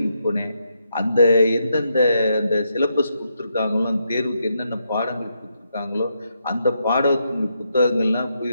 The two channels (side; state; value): both; inverted; correlation -0.80